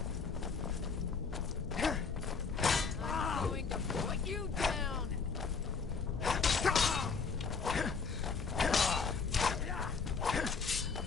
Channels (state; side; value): quieter; right; 5.2 dB